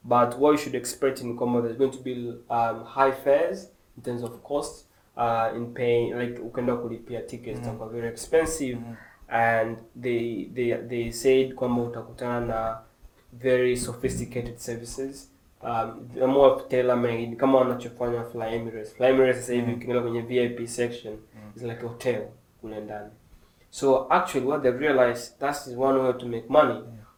But what you should expect in kwamba there's going to be high fares in terms of cost, in paying, like ukenda kulipia tickets are very expensive. And they said kwamba utakutana na very sophisticated services, more tailor-made kama wanachofanya Fly Emirates. Fly Emirates sasa hivi ukiingia kwenye VIP section is like a hotel kule ndani. So actually what they've realized, that is one way to make money,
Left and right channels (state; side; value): identical; both; correlation 1.00